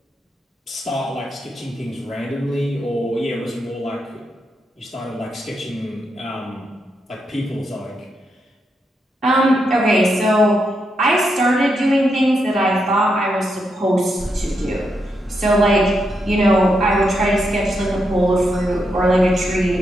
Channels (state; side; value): normal; both; correlation 0.82